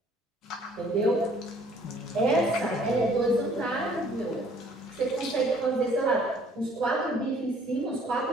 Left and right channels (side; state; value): both; normal; correlation 0.58